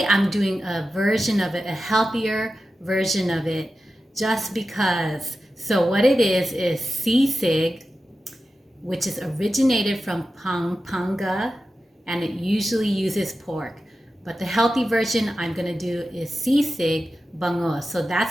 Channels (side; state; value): both; normal; correlation 0.92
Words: I'm doing a version of it, a healthier version of it, just because. So what it is sisig, which is originated from Pampanga, and it usually uses pork. But the healthy version I'm gonna do is sisig bangus. So